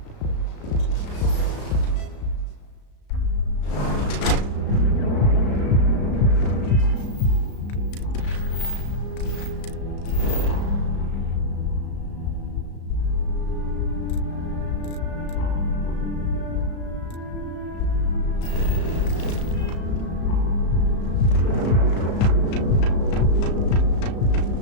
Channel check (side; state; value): right; late; 35 ms